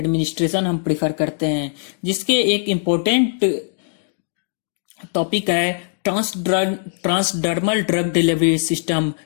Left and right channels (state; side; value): silent; right; 65 dB below the other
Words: हम प्रिफर करते हैं, जिसके एक इम्पोर्टेंट टॉपिक है transdermal drug delivery system